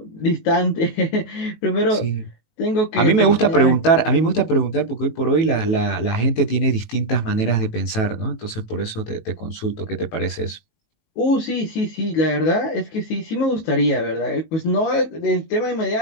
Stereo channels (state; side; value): late; right; 18 ms